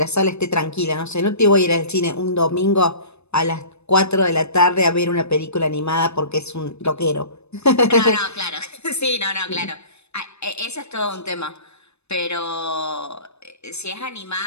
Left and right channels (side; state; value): right; late; 0.80 ms